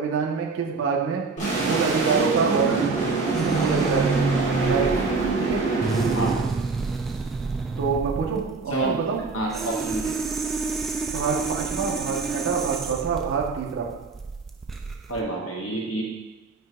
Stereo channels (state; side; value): quieter; left; 4.1 dB